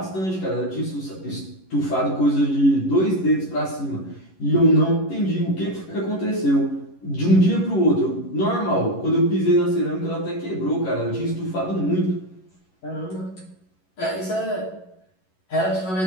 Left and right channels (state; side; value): late; right; 11 ms